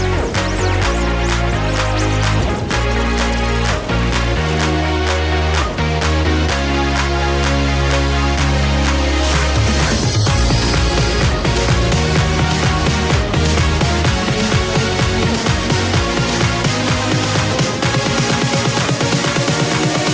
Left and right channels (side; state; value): both; identical; correlation 1.00